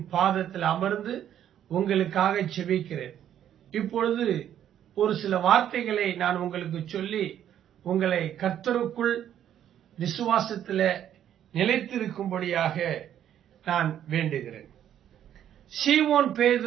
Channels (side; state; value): left; quieter; 10.4 dB